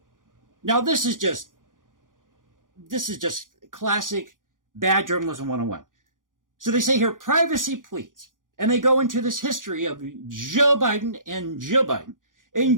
Now, this is just classic bad journalism 101. So they say here, privacy please. And they go into this history of Joe Biden and Jill Biden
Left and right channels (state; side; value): late; left; 0.89 ms